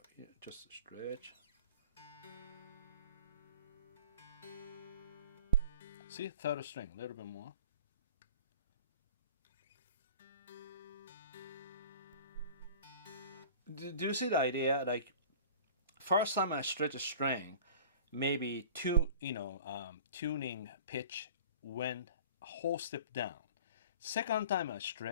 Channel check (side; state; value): both; inverted; correlation -0.43